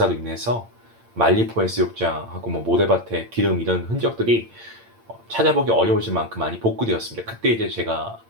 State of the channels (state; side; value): late; left; 8.8 ms